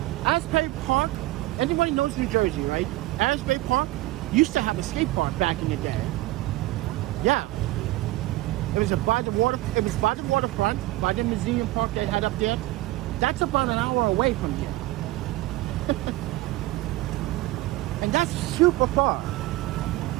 Asbury Park, anybody knows New Jersey, right? Asbury Park used to have a skate park back in the day. Yeah. It was by the waterfront, by the museum park they had up there. That's about an hour away from here. And that's super far.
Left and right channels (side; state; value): left; quieter; 18.2 dB